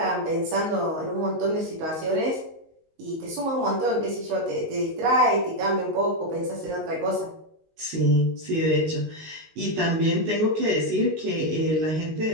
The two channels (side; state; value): left; late; 19 ms